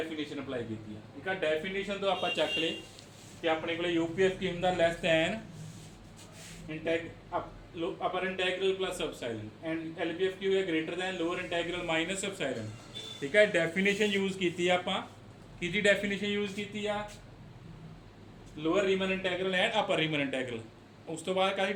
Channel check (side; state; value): both; identical; correlation 1.00